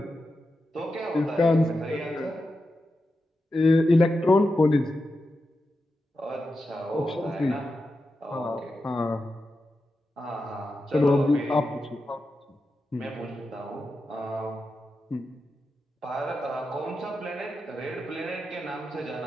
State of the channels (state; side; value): normal; both; correlation 0.89